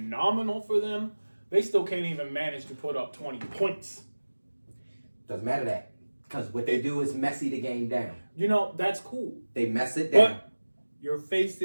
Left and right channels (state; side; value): inverted; both; correlation -1.00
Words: for them, they still can't even manage to put up 20 points. Doesn't matter that. Because what they do is messy the game down. You know, that's cool. They mess it down. But you're